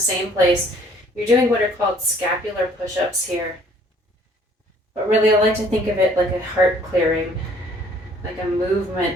place. You're doing what are called scapular push-ups here. But really, I like to think of it like a heart clearing, like a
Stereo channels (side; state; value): both; normal; correlation 0.58